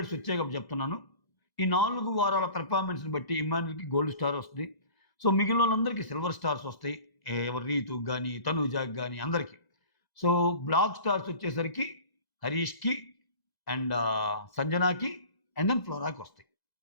వచ్చాయి కాబట్టి చెప్తున్నాను. ఈ 4 వారాల పెర్ఫార్మెన్స్ని బట్టి ఇమ్మాన్యుల్కి గోల్డ్ స్టార్ వస్తుంది. సో మిగిలిన వాళ్ళందరికీ సిల్వర్ స్టార్స్ వస్తాయి. ఎవరు రీతుకి కానీ తనూజాకి కానీ అందరికీ. సో బ్లాక్ స్టార్స్ వచ్చేసరికి హరీష్కి అండ్ సంజనాకి అండ్ దెన్ ఫ్లోరాకి వస్తాయి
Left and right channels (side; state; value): right; late; 2.0 ms